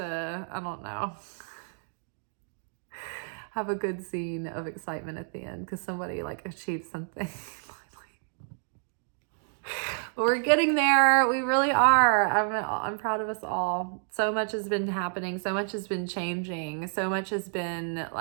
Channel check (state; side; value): silent; left; digital silence